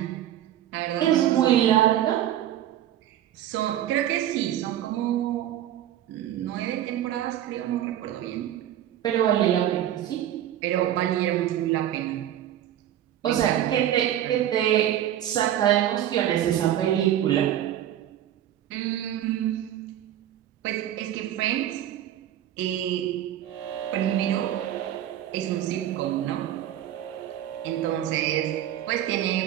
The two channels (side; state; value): left; quieter; 11.7 dB